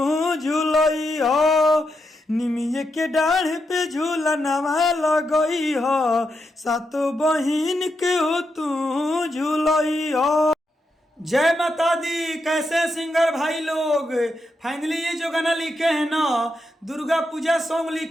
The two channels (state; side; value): normal; both; correlation 0.84